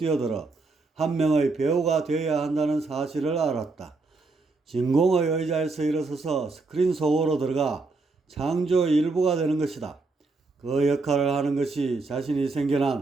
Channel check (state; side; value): quieter; left; 3.7 dB